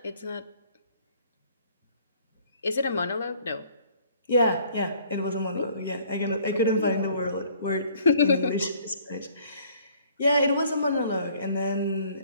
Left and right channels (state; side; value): inverted; both; correlation -0.58